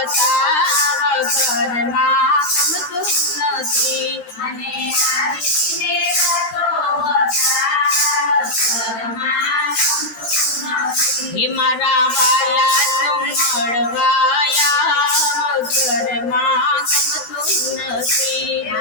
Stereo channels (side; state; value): right; late; 13 ms